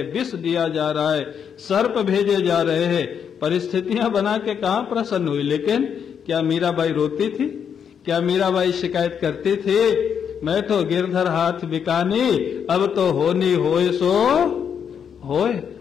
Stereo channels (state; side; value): quieter; right; 7.6 dB